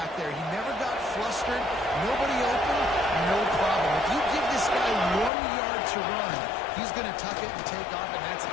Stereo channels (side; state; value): right; drops out; at 5.3 s